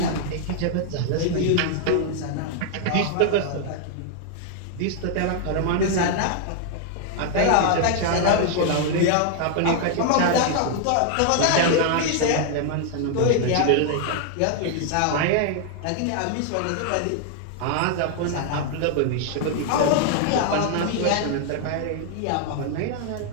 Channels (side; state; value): both; different; correlation 0.00